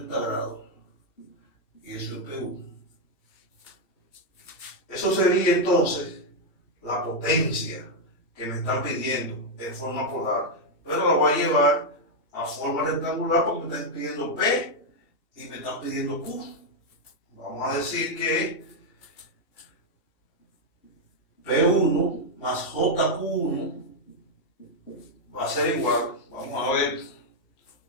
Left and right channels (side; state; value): right; late; 2.9 ms